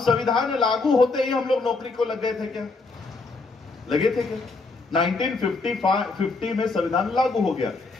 संविधान लागू होते ही हम लोग नौकरी को लग गए थे क्या? लगे थे क्या? 1950 में संविधान लागू हो गया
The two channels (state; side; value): quieter; right; 3.8 dB